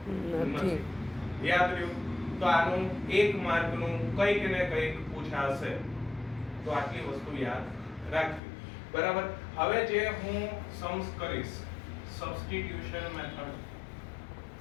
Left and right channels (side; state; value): right; drops out; at 8.4 s